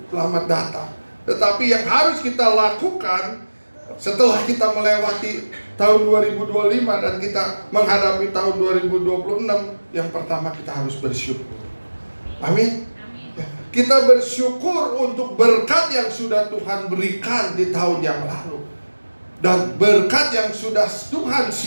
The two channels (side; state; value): both; inverted; correlation -1.00